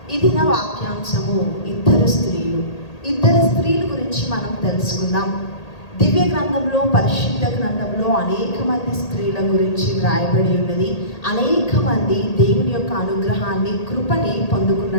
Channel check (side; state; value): right; late; 1.8 ms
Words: ఇది నా వాక్యాంశము ఇద్దరు స్త్రీల గురించి మనం తెలుసుకుందాం. దివ్య గ్రంథంలో, పరిశుద్ధ గ్రంథంలో అనేక మంది స్త్రీల గురించి వ్రాయబడి ఉన్నది. అనేక మంది దేవుని యొక్క అనుగ్రహాన్ని, కృపని